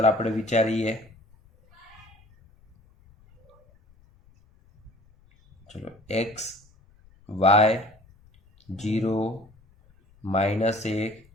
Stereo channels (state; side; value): noise; left; rumble, 30 dB below the sound